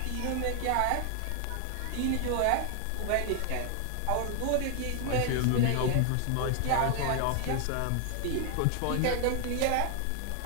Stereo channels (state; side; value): different; both; correlation 0.00